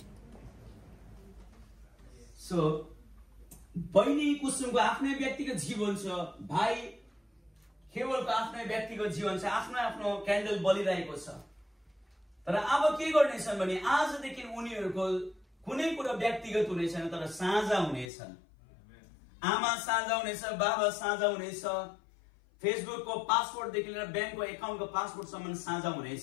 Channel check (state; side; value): drops out; right; at 18.1 s